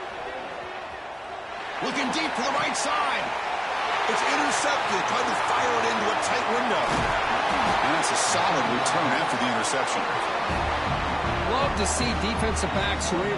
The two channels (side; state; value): both; identical; correlation 1.00